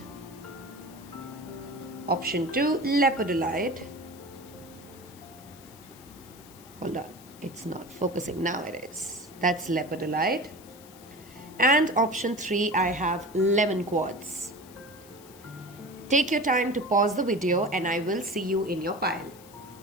Option 2, lepidolite. Hold on, it's not focusing. Now it is. That's lepidolite. And option 3, I have lemon quartz. Take your time to pause the video and I will see you in your pile.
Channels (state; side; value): noise; left; hiss, 22 dB below the sound